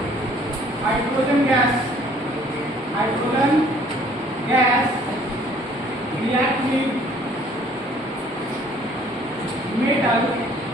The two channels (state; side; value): normal; both; correlation 0.58